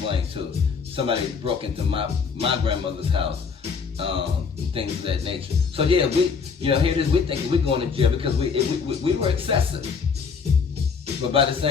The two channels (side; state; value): right; quieter; 5.7 dB